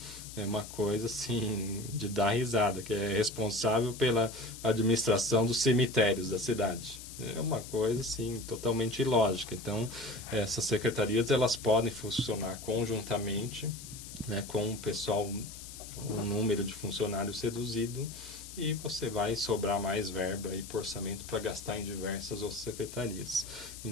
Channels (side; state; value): left; noise; hiss, 13 dB below the sound